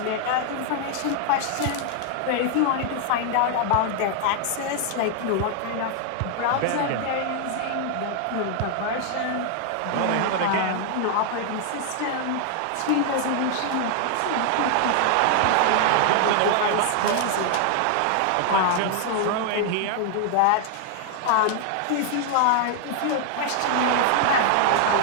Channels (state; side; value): different; both; correlation 0.00